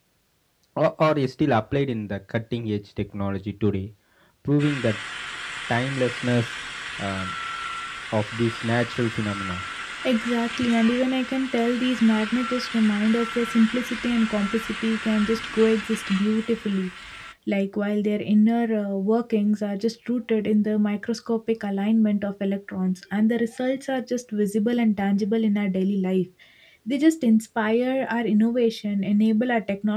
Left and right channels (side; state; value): both; identical; correlation 1.00